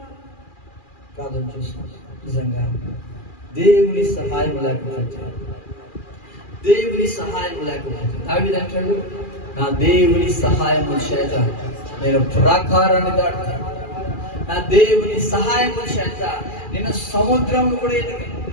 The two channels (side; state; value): right; late; 2.4 ms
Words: ప్రార్థన చేస్తున్నాం. నిజంగా దేవుని సహాయం లేకపోతే, దేవుని సహాయం లేకపోతే దావీదు అంటాడు, నా దేవుని సహాయము చేత నేను ప్రాకారాన్ని దాటుతాను, నా దేవుని సహాయము చేత నేను సముద్రం కూడా ఎదిగాను.